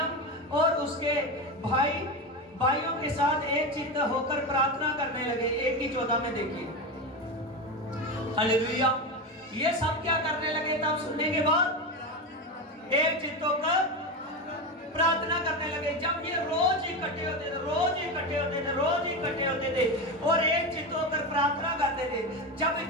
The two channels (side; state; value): both; normal; correlation 0.18